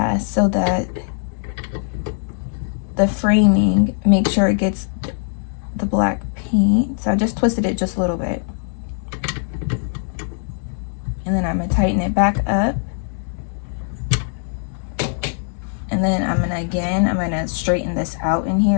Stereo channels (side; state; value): right; silent; 65 dB below the other